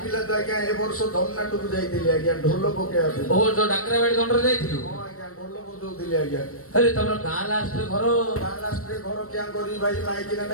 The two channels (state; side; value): late; right; 0.64 ms